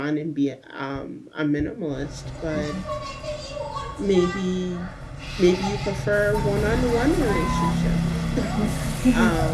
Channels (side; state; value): both; identical; correlation 1.00